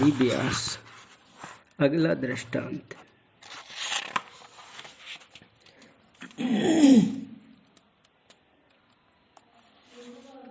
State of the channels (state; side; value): identical; both; correlation 1.00